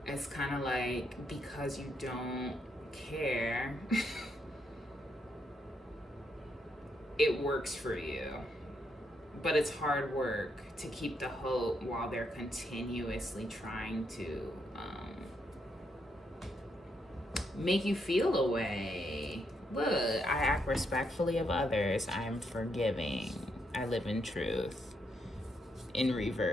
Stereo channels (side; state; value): both; normal; correlation 0.78